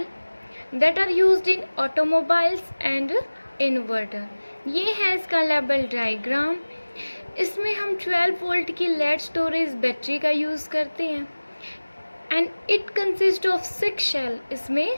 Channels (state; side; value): inverted; both; correlation -1.00